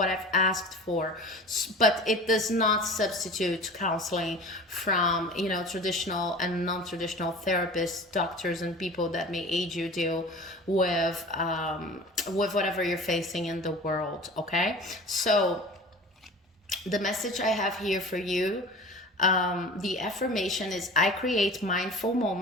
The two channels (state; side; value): normal; both; correlation 0.39